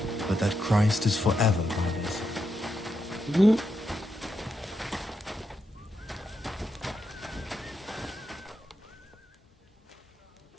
but that Christ is forever with us.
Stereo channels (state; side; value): normal; both; correlation 0.84